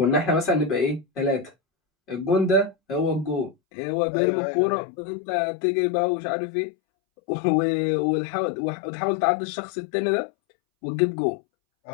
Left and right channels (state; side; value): drops out; right; at 3.6 s